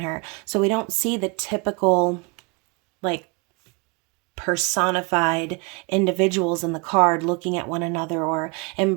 her. So we don't see the typical, like, personified individuals in the card looking at one another or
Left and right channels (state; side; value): quieter; left; 30.8 dB